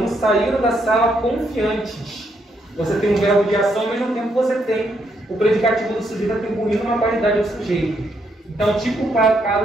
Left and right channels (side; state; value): both; normal; correlation 0.76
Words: saíram da sala confiantes. Você tem um verbo de ação, ao mesmo tempo você tem o predicativo do sujeito atribuindo uma qualidade ao sujeito. Então, tipo o